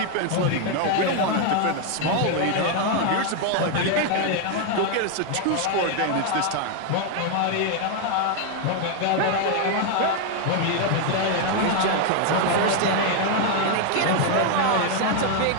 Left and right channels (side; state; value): both; different; correlation 0.00